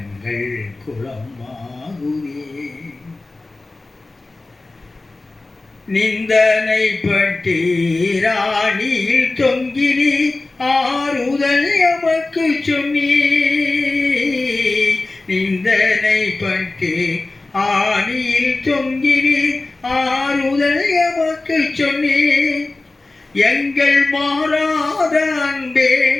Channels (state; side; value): quieter; right; 3.2 dB